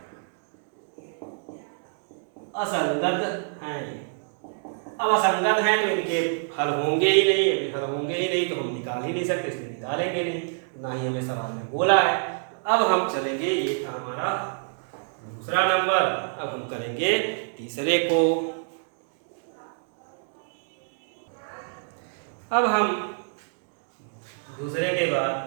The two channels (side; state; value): left; silent; digital silence